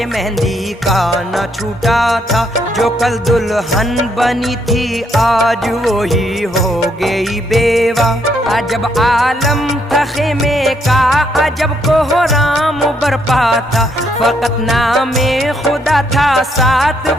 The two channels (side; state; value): both; normal; correlation 0.73